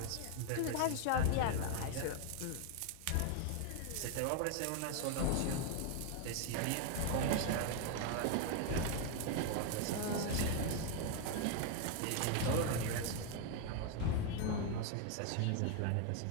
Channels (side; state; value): both; different; correlation 0.01